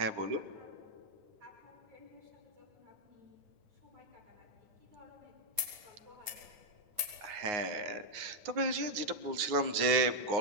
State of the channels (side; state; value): left; late; 9.6 ms